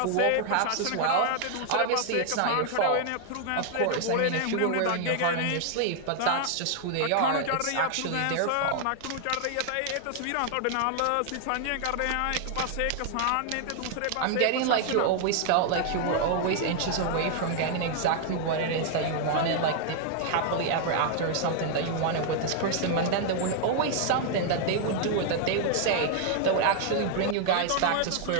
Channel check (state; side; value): different; both; correlation 0.00